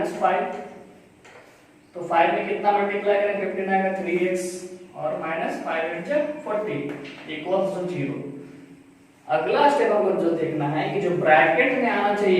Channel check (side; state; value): both; identical; correlation 1.00